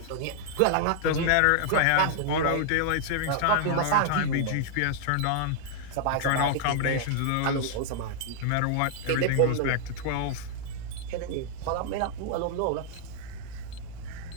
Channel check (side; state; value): both; different; correlation -0.01